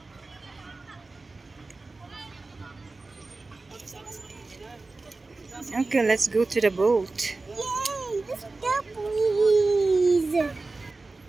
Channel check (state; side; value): quieter; left; 3.5 dB